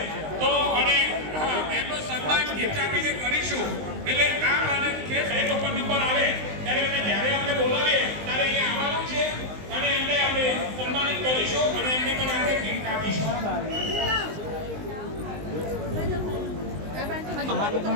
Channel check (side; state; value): left; late; 19 ms